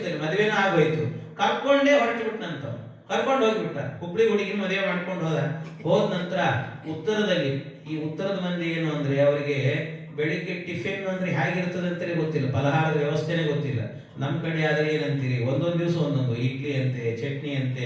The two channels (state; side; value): identical; both; correlation 1.00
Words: ಮದುವೆನೂ ಆಗೋಯ್ತು. ಕರ್ಕೊಂಡೇ ಹೊರಟುಬಿಟ್ನಂತ, ಕರ್ಕೊಂಡು ಹೋಗ್ಬಿಟ್ಟ. ಹುಬ್ಳಿ ಹುಡುಗಿನ ಮದುವೆ ಮಾಡ್ಕೊಂಡು ಹೋದ ನಂತರ ಉತ್ತರದಲ್ಲಿ, ಈ ಉತ್ತರದ ಮಂದಿ ಏನು ಅಂದ್ರೆ, ಅವರಿಗೆ ಬೆಳಿಗ್ಗೆ ಟಿಫಿನ್ ಅಂದ್ರೆ ಹೇಗಿರ್ತದೆ ಅಂತಲೇ ಗೊತ್ತಿಲ್ಲ, ಫಲಹಾರದ ವ್ಯವಸ್ಥೆನೇ ಗೊತ್ತಿಲ್ಲ. ನಮ್ಮ ಕಡೆ ಆದ್ರೆ ಏನಂತೀರಿ, ಒಂದೊಂದು ದಿವಸ ಒಂದೊಂದು ಇಡ್ಲಿ ಅಂತೆ, ಚಟ್ನಿ ಅಂತೆ,